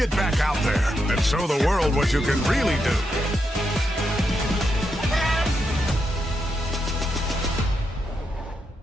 back out there and show the world what you can really do!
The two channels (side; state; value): both; normal; correlation 0.83